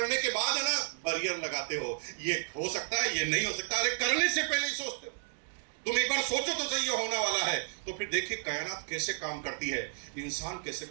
के बाद है ना बैरियर लगाते हो, ये हो सकता है, ये नहीं हो सकता। अरे करने से पहले ही सोचते हो। तुम एक बार सोचो तो सही ये होने वाला है, तो फिर देखिए कायनात कैसे काम करती है, इंसान कैसे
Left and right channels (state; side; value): silent; left; 56 dB below the other